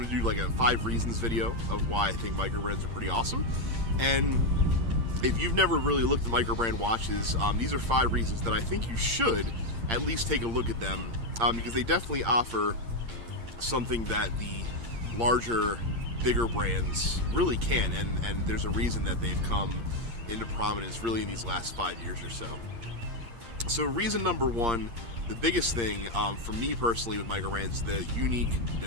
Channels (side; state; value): left; late; 8.7 ms